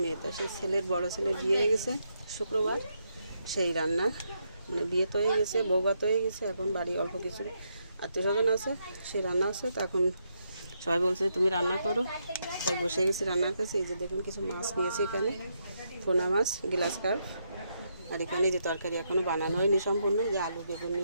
মেয়ে। তো সেই ছেলের বড় ছেলে বিয়ে হয়ে গেছে শুক্রবার। সেই রান্না মানে বিয়ে তো হয়ে গেছে, বৌভাত হয়ে গেছে, এখন বাড়ি অল্প কিছু আত্মীয় স্বজন আছে, সেই রান্না আছে। তো এখন সবাই বলছে তুমি রান্না করো, তাই বসে গেছি রান্নার কাছে। এই যে দেখুন কিছু মাছ নিয়েছি এখানে, পোনা মাছ, গ্লাস কার্প। আর এখানে যে তরকারি এখনও বানানো হয়নি সম্পূর্ণ, যে আলু বেগুন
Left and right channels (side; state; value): both; inverted; correlation -0.79